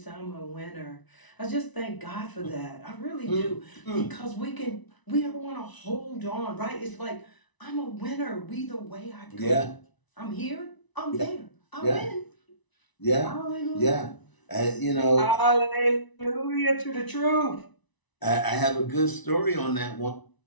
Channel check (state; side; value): late; right; 1.0 ms